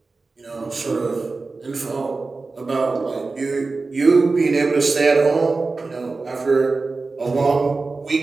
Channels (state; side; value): quieter; left; 3.9 dB